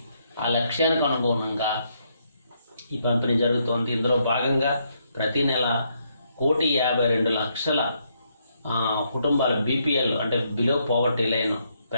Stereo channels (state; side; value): inverted; both; correlation -0.75